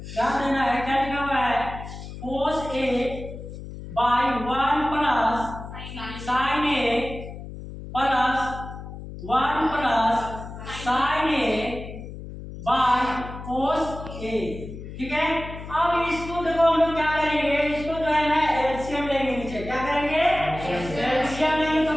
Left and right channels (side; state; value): left; noise; hum, 11 dB below the sound